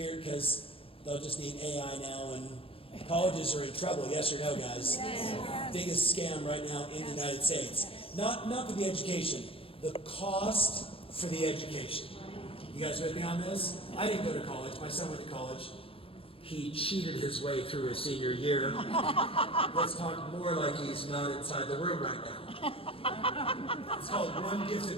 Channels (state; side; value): late; right; 0.27 ms